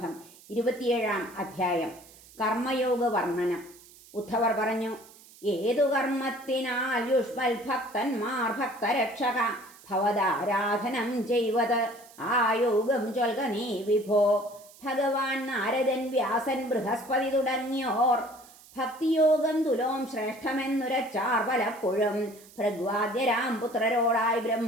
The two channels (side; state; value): right; noise; hiss, 23 dB below the sound